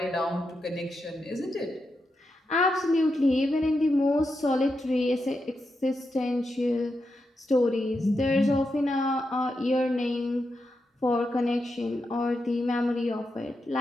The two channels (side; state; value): both; normal; correlation 0.86